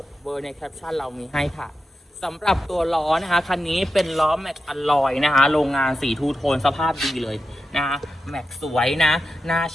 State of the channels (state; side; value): normal; both; correlation 0.89